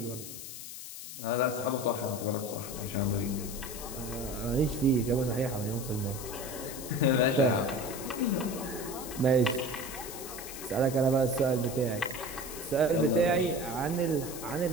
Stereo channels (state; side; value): noise; left; hiss, 10 dB below the sound